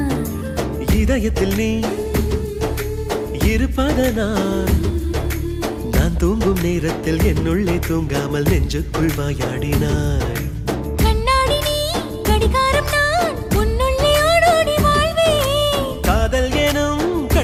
இதயத்தில் நீ இருப்பதனால் நான் தூங்கும் நேரத்தில் என்னுள்ளே தூங்காமல் நெஞ்சுக்குள் வாயாடினாய். கண்ணாடி நீ கடிகாரம் நான் உன்னுள்ளே ஓடோடி வாழ்வே. காதல் எனும்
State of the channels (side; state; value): both; identical; correlation 1.00